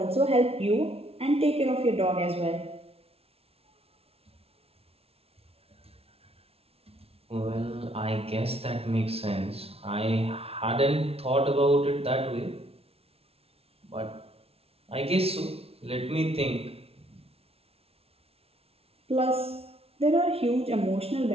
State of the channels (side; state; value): left; late; 0.29 ms